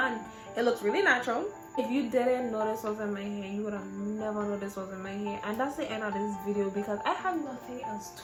It looks really natural. If you didn't know this was in my hair, you would have never known this was in my hair. And that's the end of this video because I have nothing else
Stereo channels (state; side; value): identical; both; correlation 1.00